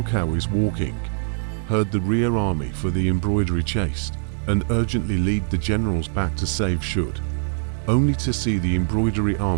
Cao is walking, heard the rear army for the embroidery chased, and urgently lead the generals back to save should, only to see the embroidery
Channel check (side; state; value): left; silent; 64 dB below the other